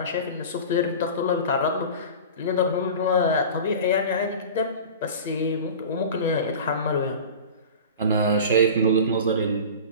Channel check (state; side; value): inverted; both; correlation -0.35